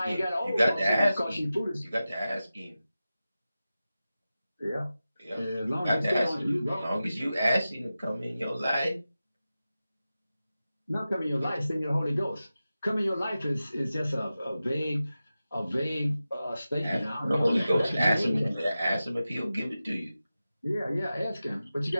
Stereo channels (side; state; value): both; inverted; correlation -0.94